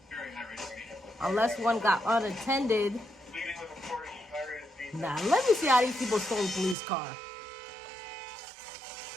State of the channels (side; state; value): left; drops out; at 6.8 s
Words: Unless one got unattended. Nah, let me see how these people stole a police car.